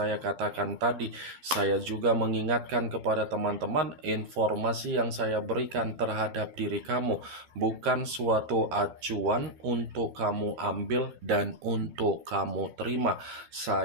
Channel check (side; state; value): left; late; 13 ms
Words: katakan tadi, saya juga mengingatkan kepada teman-teman informasi yang saya berikan terhadap diri kamu bukan suatu acuan untuk kamu ambil dan untuk kamu terima.